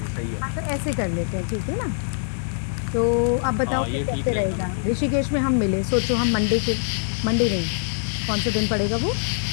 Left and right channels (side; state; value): right; silent; digital silence